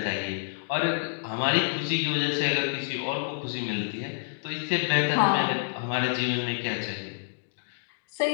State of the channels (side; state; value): right; silent; digital silence